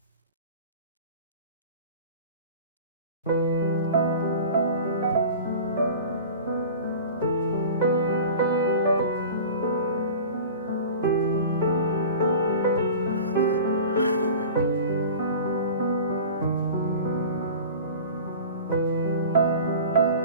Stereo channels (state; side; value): inverted; both; correlation -0.38